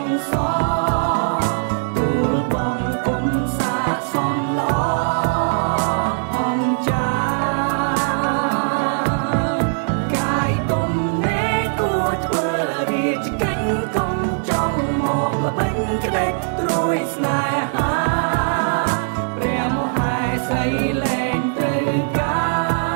ងសរទូលបងគុំសាសំល្អអង្គចាកាយទុំនេគួរធ្វើរាជកិច្ចកុំចង់មកល្បិញក្ដេចត្រួយស្នេហាព្រះមហាសីលែងត្រូវកា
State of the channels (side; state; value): left; silent; digital silence